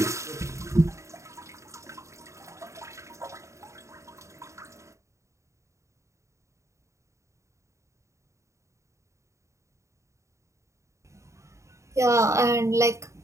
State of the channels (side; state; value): left; late; 0.14 ms